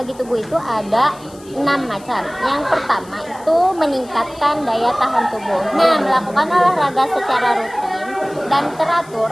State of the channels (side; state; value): left; noise; hiss, 24 dB below the sound